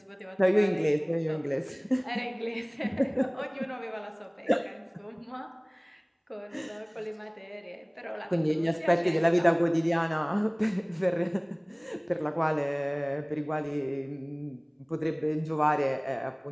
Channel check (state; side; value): identical; both; correlation 1.00